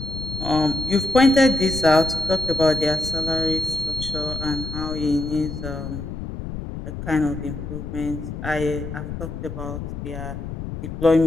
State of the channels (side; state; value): left; noise; rumble, 7 dB below the sound